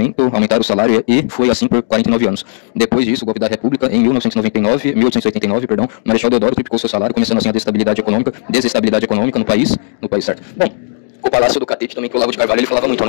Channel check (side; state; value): right; silent; digital silence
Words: o salário e foi assim por 49 anos. Depois disso, o golpe da República, em 1889, Marechal Deodoro triplicou seu salário, começando assim a desestabilidade econômica no país, certo? Bom, o Palácio do Catete também, que o Olavo de Carvalho ele falava muito,